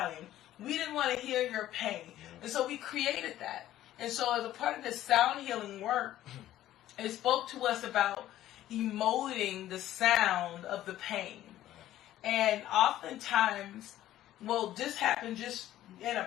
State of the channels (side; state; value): right; quieter; 13.4 dB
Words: We didn't want to hear your pain. Yeah. And so we created that. And so as a part of this sound healing work, it spoke to us about emoting the sound of the pain. And oftentimes, this happened just in